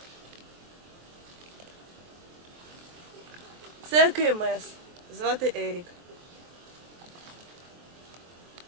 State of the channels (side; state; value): left; late; 23 ms